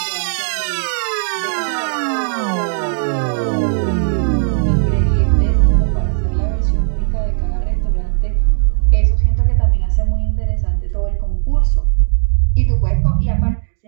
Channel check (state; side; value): silent; left; digital silence